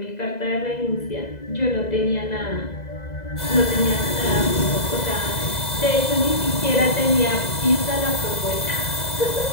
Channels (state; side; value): late; right; 2.0 ms